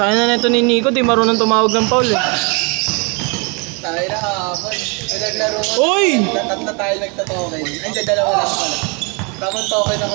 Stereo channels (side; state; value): left; quieter; 32.4 dB